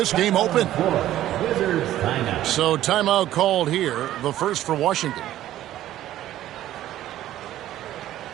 game open. So timeout called here, the first for Washington.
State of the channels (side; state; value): left; quieter; 13.3 dB